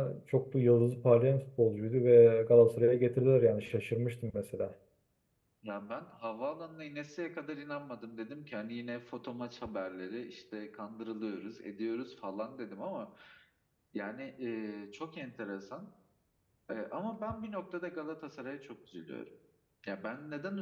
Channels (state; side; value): identical; both; correlation 1.00